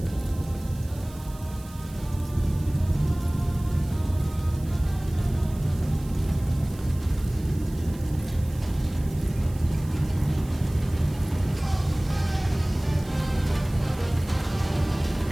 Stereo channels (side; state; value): right; noise; hiss, 21 dB below the sound